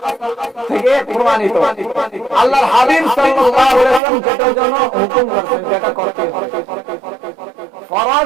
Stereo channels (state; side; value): drops out; left; at 4.0 s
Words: থেকে প্রমাণিত, আল্লাহর হাবিব সাল্লাল্লাহু আলাইহি ওয়াসাল্লাম যেটার জন্য হুকুম করেছেন যেটা করতে হবে।